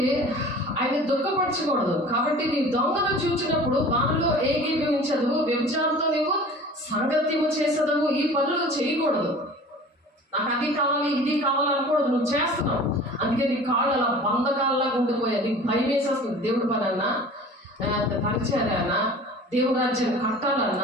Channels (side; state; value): both; normal; correlation 0.42